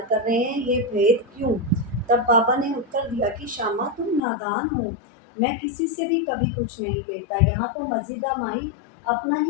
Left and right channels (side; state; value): right; drops out; at 4.2 s